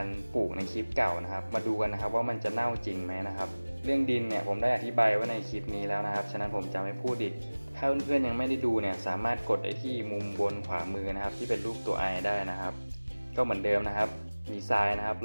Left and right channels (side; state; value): both; inverted; correlation -1.00